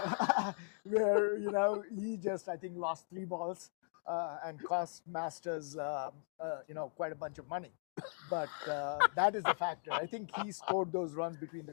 Where, he just, I think, lost 3 balls and cost Masters, quite a bunch of money. But that is the factor. I think he scored those runs between the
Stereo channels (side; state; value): right; silent; 52 dB below the other